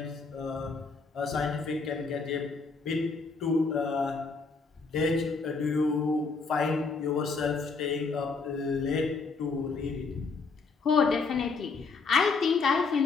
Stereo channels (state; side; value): quieter; right; 4.4 dB